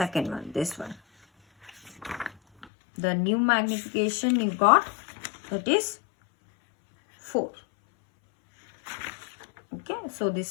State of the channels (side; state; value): right; drops out; at 2.7 s